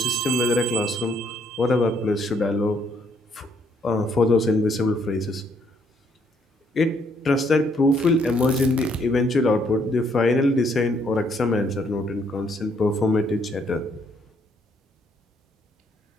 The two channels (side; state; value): both; normal; correlation 0.69